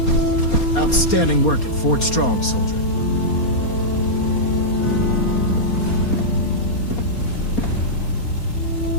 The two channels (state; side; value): late; right; 4.3 ms